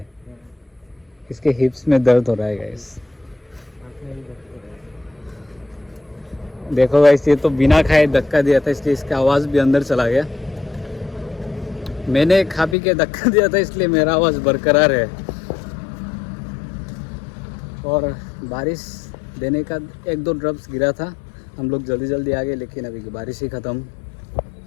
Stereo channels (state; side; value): drops out; right; at 12.8 s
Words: इसके हिप्स में दर्द हो रहा है गाइस। देखो गाइस ये तो बिना खाए धक्का दिया था, इसलिए इसका आवाज़ भी अंदर चला गया। मैंने खा पी के धक्का दिया था, इसलिए मेरा आवाज़ बरकरार है। और बारिश देने का 1-2 ड्रॉप्स गिरा था, हम लोग जल्दी जल्दी आ गए, लेकिन अभी बारिश ही ख़त्म।